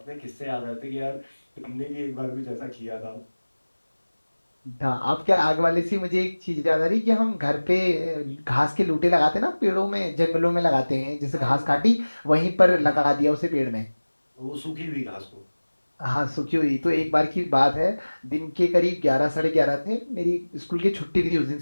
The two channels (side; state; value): both; inverted; correlation -1.00